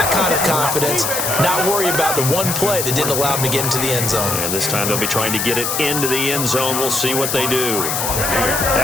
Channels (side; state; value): left; noise; hiss, 1 dB below the sound